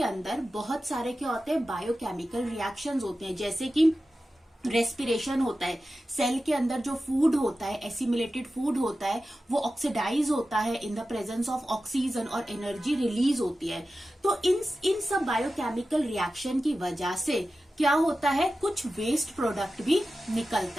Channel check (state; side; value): normal; both; correlation 0.94